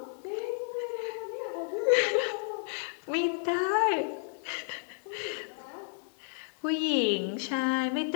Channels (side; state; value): right; silent; 57 dB below the other